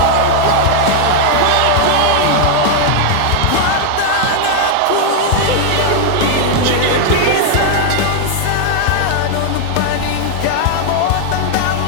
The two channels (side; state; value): both; different; correlation 0.00